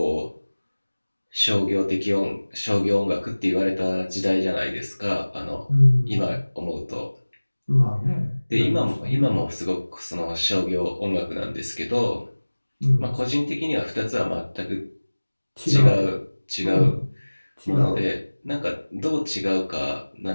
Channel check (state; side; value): inverted; both; correlation -1.00